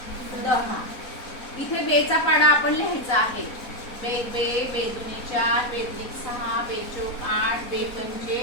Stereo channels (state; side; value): late; right; 4.0 ms